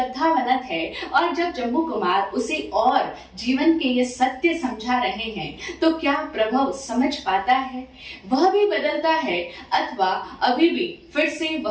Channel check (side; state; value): both; identical; correlation 1.00